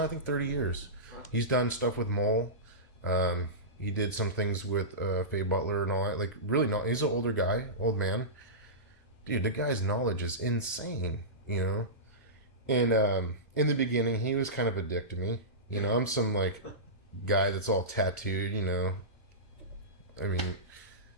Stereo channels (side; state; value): right; late; 2.6 ms